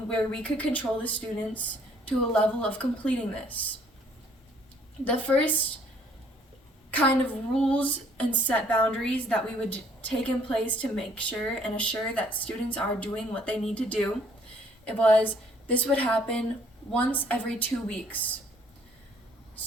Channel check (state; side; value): normal; both; correlation 0.62